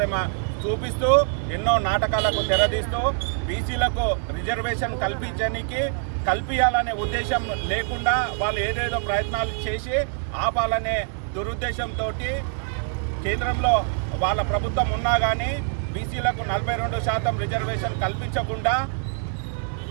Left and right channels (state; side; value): silent; left; 56 dB below the other